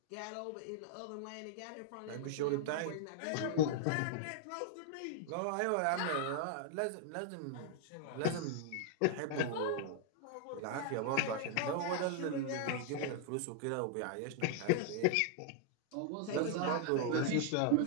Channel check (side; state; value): both; different; correlation 0.00